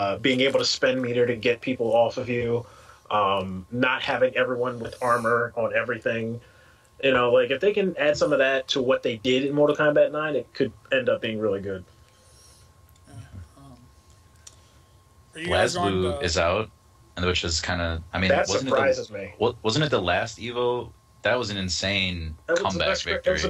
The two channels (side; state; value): both; identical; correlation 1.00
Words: being able to spend meter to get people off of you, not having everyone with armor on everything, like if they can add some of that to what they did in Mortal Kombat 9, it could end up being really good. BlazBlue is out, and which is kind of, that surprises me. Wasn't it the last Evo? That was an insane comeback victory. It was the